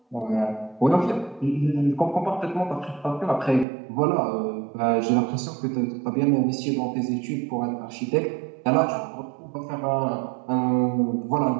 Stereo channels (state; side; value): drops out; left; at 3.7 s